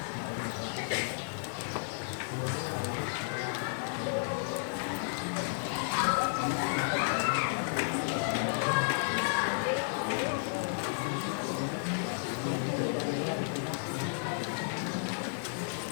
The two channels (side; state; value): right; silent; digital silence